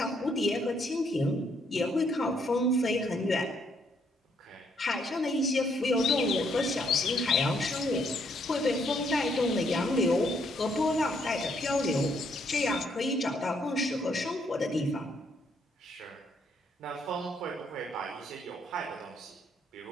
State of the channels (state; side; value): normal; both; correlation 0.71